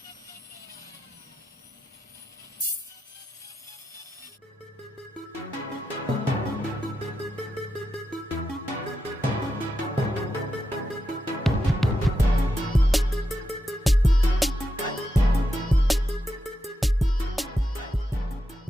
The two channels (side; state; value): both; normal; correlation 0.87